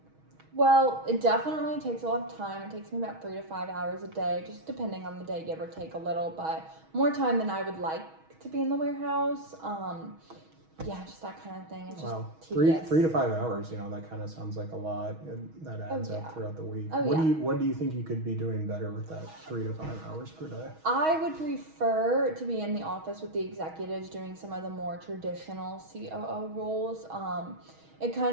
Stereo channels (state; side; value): late; left; 6.3 ms